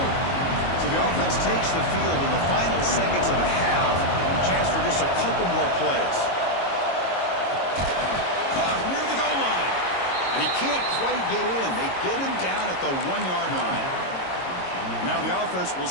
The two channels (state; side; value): late; right; 22 ms